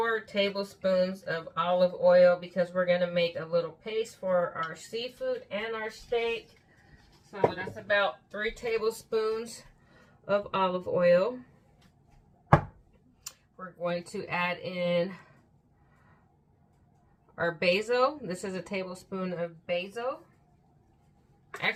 tablespoons of olive oil because we're going to make a little paste for our seafood and our steak. So that's about 3 tablespoons of olive oil. We're going to add in our basil. This is a tablespoon of basil.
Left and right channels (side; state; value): both; identical; correlation 1.00